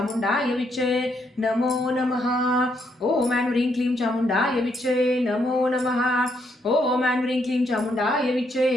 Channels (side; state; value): both; normal; correlation 0.75